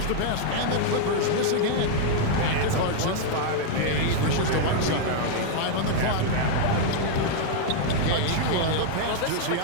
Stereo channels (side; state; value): both; different; correlation -0.01